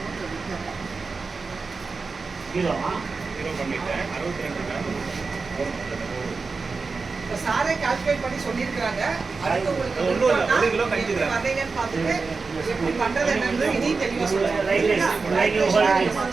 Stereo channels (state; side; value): quieter; left; 4.4 dB